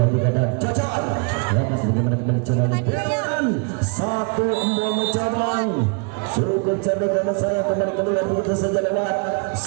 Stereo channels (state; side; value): quieter; left; 33.3 dB